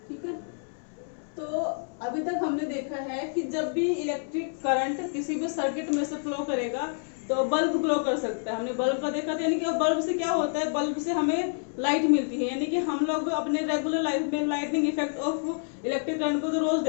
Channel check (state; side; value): silent; right; digital silence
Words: ठीक है, तो अभी तक हमने देखा है कि जब भी इलेक्ट्रिक करंट किसी भी सर्किट में से फ्लो करेगा तो बल्ब ग्लो कर सकता है। हमने बल्ब का देखा था, यानी कि बल्ब से क्या होता है, बल्ब से हमें लाइट मिलती है, यानी कि हम लोग अपने रेगुलर लाइफ में lightning effect of electric current को तो रोज